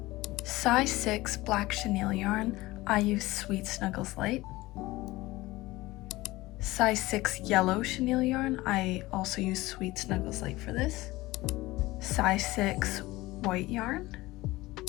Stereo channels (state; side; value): quieter; right; 19.3 dB